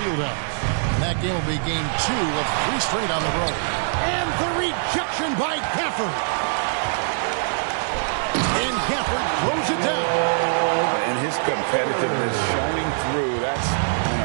And that game will be game 2 of 3 straight on the road. And the rejection by Gafford. And Gafford throws it down. And his competitiveness showing through. That's an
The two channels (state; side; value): silent; left; digital silence